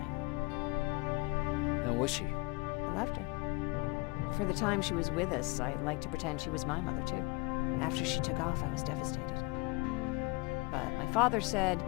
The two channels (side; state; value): right; quieter; 26.5 dB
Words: How was she? I loved her. For the time she was with us, I liked to pretend she was my mother, too. After she took off, I was devastated. But my father said,